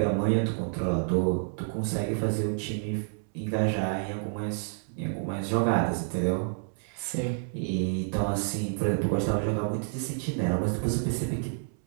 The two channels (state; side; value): silent; left; 59 dB below the other